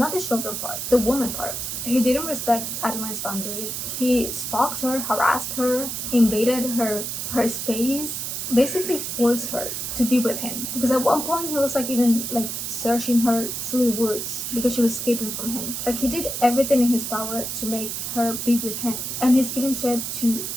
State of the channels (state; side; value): noise; right; hiss, 4 dB below the sound